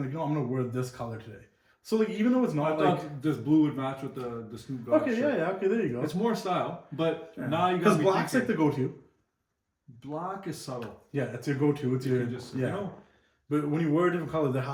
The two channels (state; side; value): identical; both; correlation 1.00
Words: like, I'm gonna wear this color today. So like even though it's I not thought like this blue would match with the Snoop Dogg okay, shirt. yeah, okay, there you go. It's more style, but Yeah. now you got because black's like the go-to. black is subtle. Yeah, it's your go-to. It's your You just yeah. you know. But when you wear a different color, there